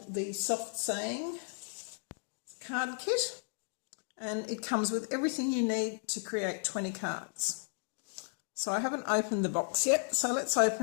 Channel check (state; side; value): silent; right; digital silence